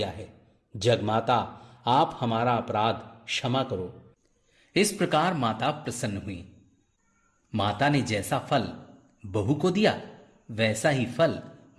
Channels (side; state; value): both; identical; correlation 1.00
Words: है। जगमाता, आप हमारा अपराध क्षमा करो। इस प्रकार माता प्रसन्न हुई। माता ने जैसा फल बहू को दिया वैसा ही फल